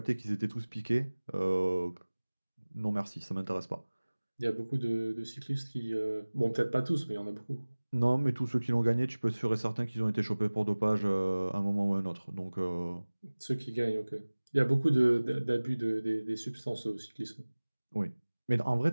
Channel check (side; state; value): both; inverted; correlation -1.00